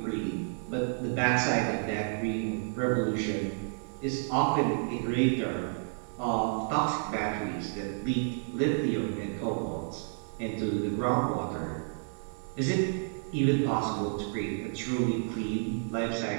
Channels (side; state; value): left; silent; digital silence